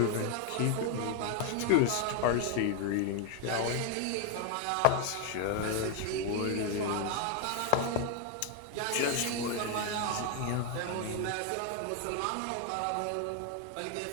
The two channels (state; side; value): different; both; correlation 0.01